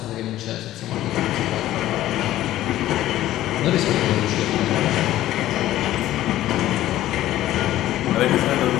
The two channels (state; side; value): quieter; right; 14.1 dB